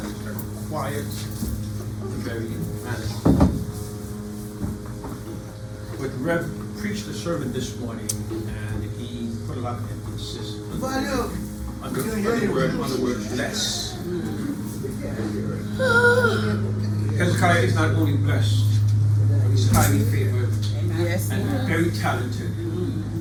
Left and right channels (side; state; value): both; identical; correlation 1.00